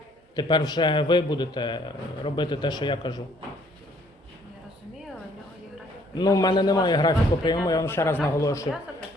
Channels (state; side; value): normal; both; correlation 0.63